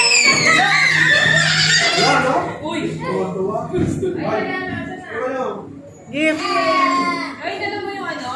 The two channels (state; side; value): identical; both; correlation 1.00